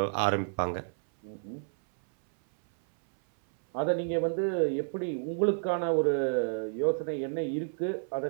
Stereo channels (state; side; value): silent; left; 58 dB below the other